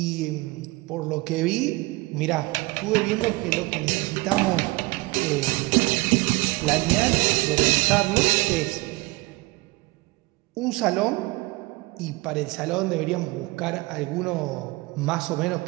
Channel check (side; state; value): left; quieter; 23.1 dB